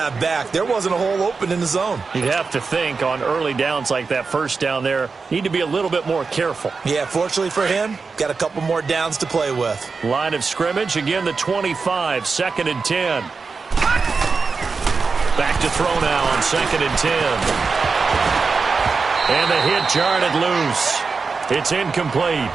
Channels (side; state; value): left; quieter; 4.7 dB